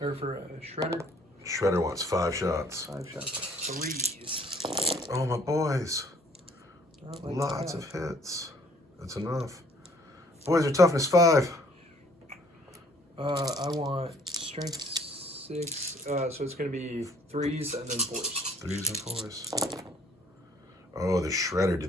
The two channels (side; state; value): both; normal; correlation 0.59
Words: for a shredder. Shredder wants 5 shots. 5 shots. 3s. Oh, my boys. Not like Lots that. of hits. That's enough. Boys are toughness 5. I want strength 6. So it's going to be 3s and then 4s. 3s and 4s. Oh, the Shredder